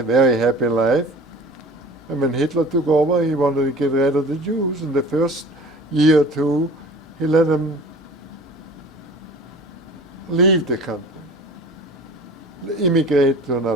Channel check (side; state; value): both; normal; correlation 0.42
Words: very happy life. And when Hitler took over, he wanted to get rid of the Jews. In the first year or two, he let them leave the country, immigrate to